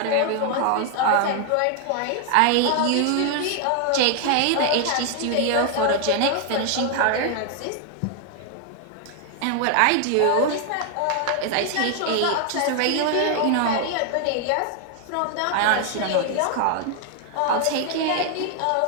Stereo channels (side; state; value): both; different; correlation 0.00